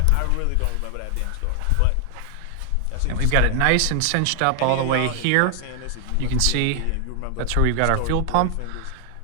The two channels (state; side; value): different; both; correlation 0.00